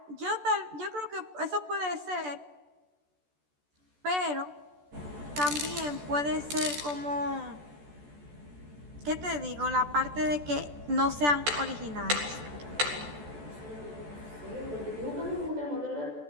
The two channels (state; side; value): late; left; 14 ms